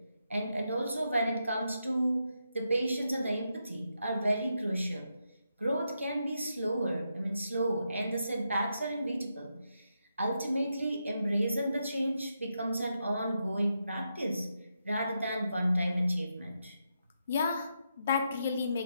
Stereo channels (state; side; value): inverted; both; correlation -0.84